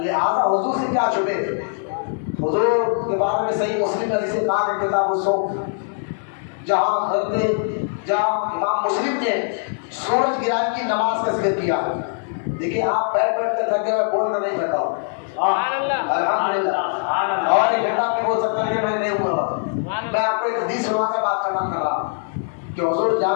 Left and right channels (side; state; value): right; silent; digital silence